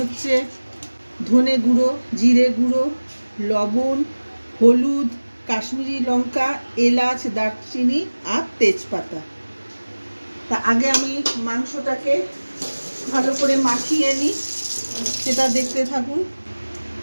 ধনে গুঁড়ো, জিরে গুঁড়ো, লবণ, হলুদ, কাশ্মীরি লঙ্কা, এলাচ, দারচিনি আর তেজপাতা। তা আগে আমি মাংসটাকে ভালো করে মাখিয়ে নিই, সেটা দেখতে থাকুন।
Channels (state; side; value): inverted; both; correlation -1.00